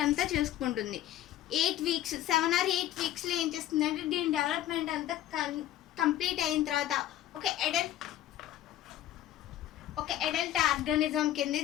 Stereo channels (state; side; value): quieter; right; 12.6 dB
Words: అంతా చేసుకుంటుంది. 8 weeks 7 or 8 weeksలో ఏం చేస్తుందంటే దీని డెవలప్మెంట్ అంతా కంప్లీట్ అయిన తర్వాత ఒక అడల్ట్ ఆర్గానిజం కింద